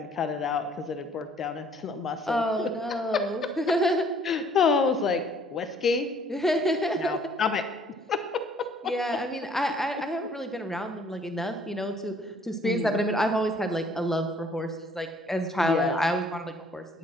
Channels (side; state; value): both; normal; correlation 0.59